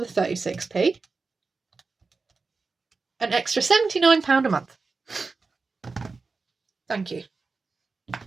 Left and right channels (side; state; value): left; quieter; 4.2 dB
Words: 36p, an extra £79 a month. Thank you.